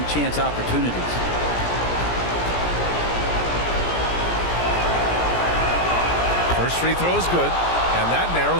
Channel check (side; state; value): right; late; 17 ms